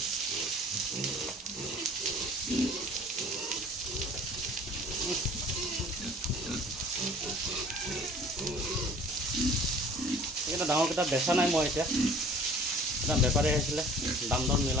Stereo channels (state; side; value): normal; both; correlation 0.49